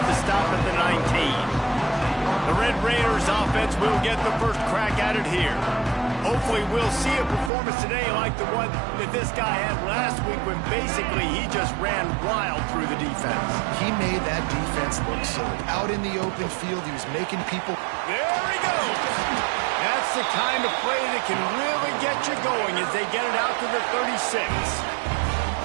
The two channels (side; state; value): left; drops out; at 7.5 s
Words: stop at the 19. The Red Raiders offense will get the first crack at it here. Hopefully we'll see a performance today like the one that this guy had last week when basically he just ran wild through the defense. He made that defense look silly. Out in the open field, he was making people... There he goes! That's the kind of play that can really get you going as they get it out to the 36.